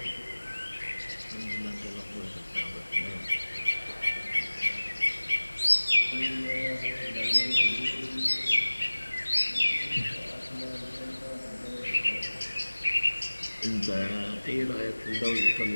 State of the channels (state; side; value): inverted; both; correlation -1.00